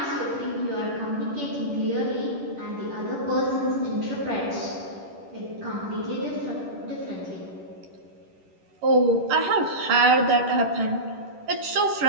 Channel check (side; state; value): left; late; 10 ms